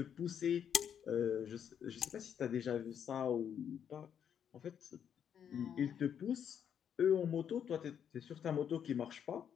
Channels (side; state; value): right; quieter; 8.5 dB